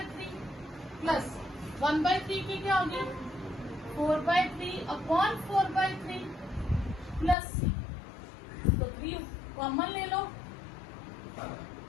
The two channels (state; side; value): drops out; right; at 7.4 s